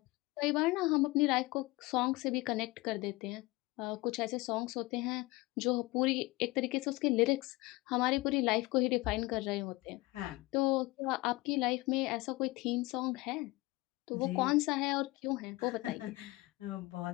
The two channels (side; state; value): right; quieter; 21.6 dB